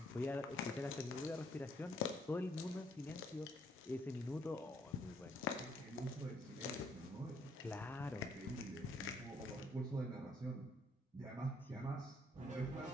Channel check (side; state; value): both; normal; correlation 0.67